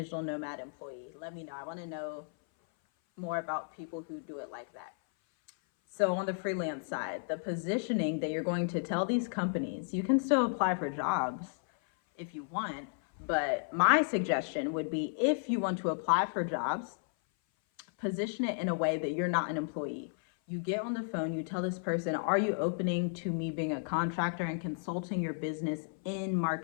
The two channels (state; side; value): silent; right; 56 dB below the other